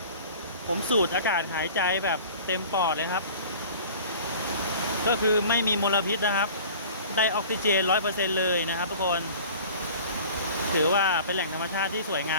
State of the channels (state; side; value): inverted; both; correlation -0.43